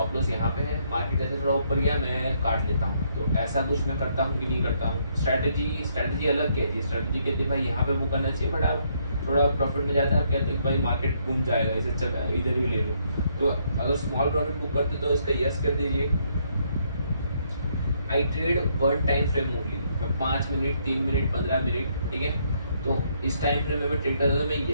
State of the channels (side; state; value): both; inverted; correlation -0.71